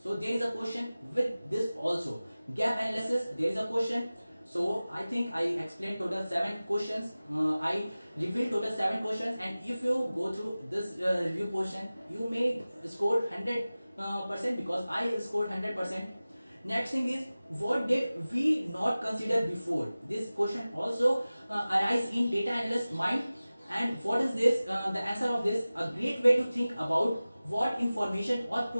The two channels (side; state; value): both; inverted; correlation -0.97